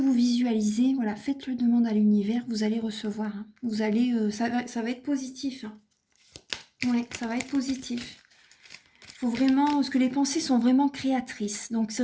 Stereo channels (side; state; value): both; identical; correlation 1.00